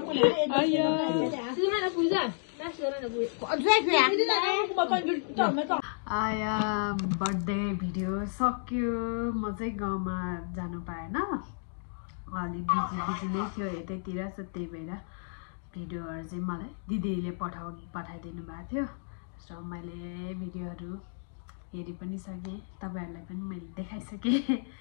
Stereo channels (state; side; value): silent; right; digital silence